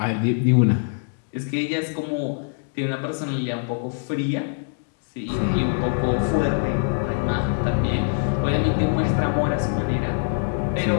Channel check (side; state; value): right; silent; digital silence